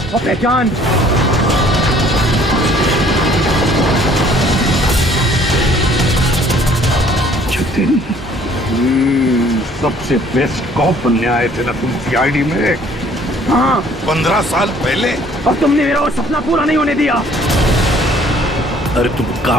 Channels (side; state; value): both; normal; correlation 0.57